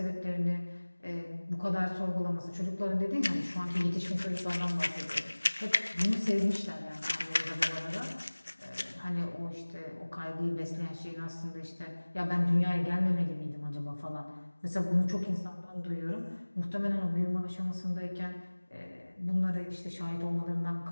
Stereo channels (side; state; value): both; inverted; correlation -1.00